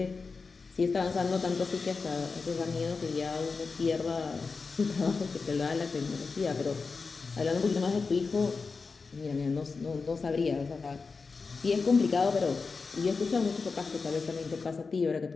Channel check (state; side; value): quieter; right; 4.5 dB